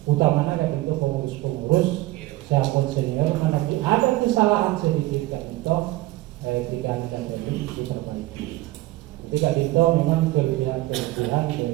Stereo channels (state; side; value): quieter; left; 18.5 dB